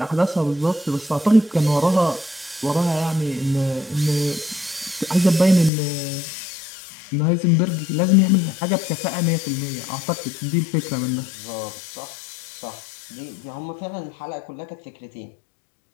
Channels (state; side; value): drops out; right; at 5.7 s